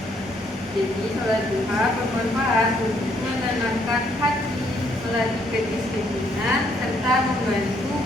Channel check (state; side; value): normal; both; correlation 0.70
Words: Jadi, sholat duha bermanfaat untuk menenangkan hati, melatih kedisiplinan, serta membantu